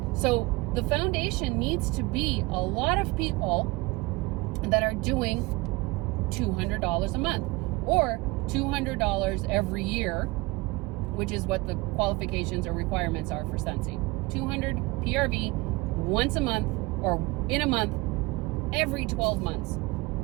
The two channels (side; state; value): left; quieter; 23.1 dB